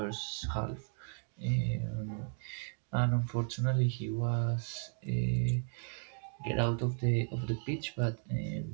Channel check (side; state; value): left; silent; 54 dB below the other